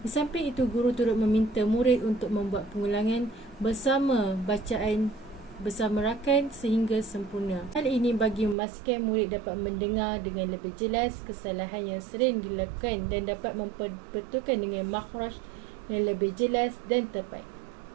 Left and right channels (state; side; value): drops out; left; at 8.6 s